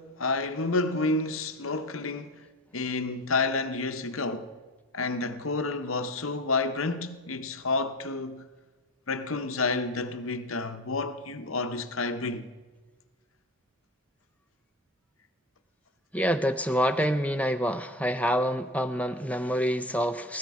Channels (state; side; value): normal; both; correlation 0.28